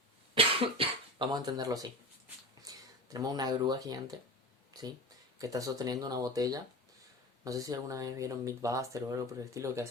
Vamos a entenderlo así. Tenemos una grúa gigante, ¿sí?, que está sosteniendo una botella. No sé si alguna vez vieron Mythbuster o algo por el estilo, que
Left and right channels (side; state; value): both; normal; correlation 0.30